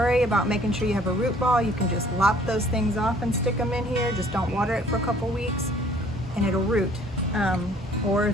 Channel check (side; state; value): both; normal; correlation 0.57